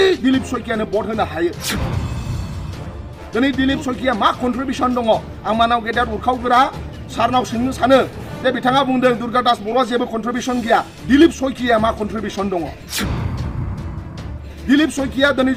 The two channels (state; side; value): identical; both; correlation 1.00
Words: दिलीप सयकियानो भट होनो हायो दिनै दिलीप सयकिया मा कन्ट्रिबिउसन दङ आं मानाव गेदेर उरखावग्रा सारनाव सोंनो सानो जे बिथाङा बुंदों दुर्गादास बर'आ जेबो कन्ट्रिबिउसन गैया दिलीप सयकिया मा कन्ट्रिबिउसन दङ दिलीप सयकिया